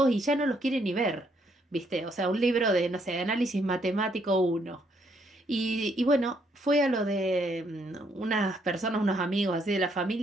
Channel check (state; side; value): normal; both; correlation 0.71